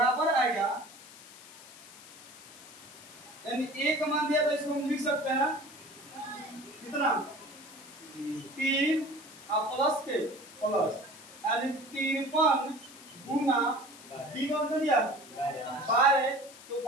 आएगा, यानी a का मान दिया तो इसको हम लिख सकते हैं कितना 3 और प्लस के प्लस यानी 53 गुना d का मतलब दिया 12 तो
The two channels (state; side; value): noise; left; hiss, 18 dB below the sound